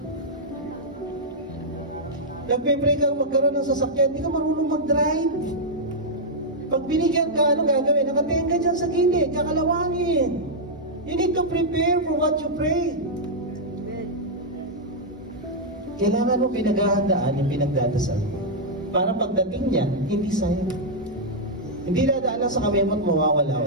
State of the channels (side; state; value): both; normal; correlation -0.06